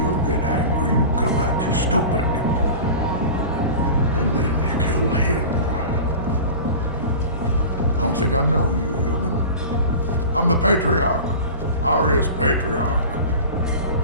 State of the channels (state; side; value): inverted; both; correlation -0.34